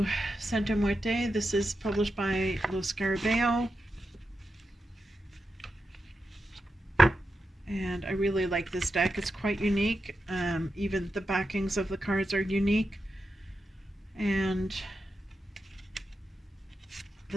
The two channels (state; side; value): normal; both; correlation 0.88